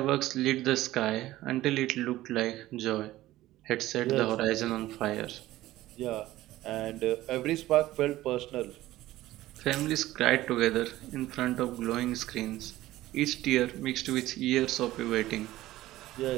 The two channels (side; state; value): left; quieter; 15.9 dB